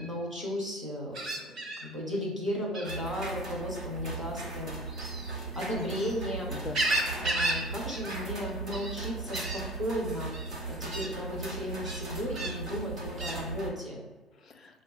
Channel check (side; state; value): both; normal; correlation 0.37